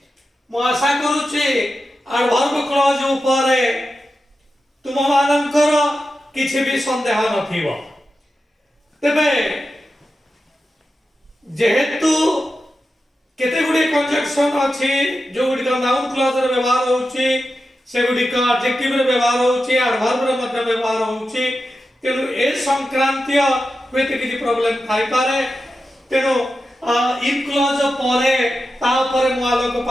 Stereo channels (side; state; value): both; normal; correlation 0.91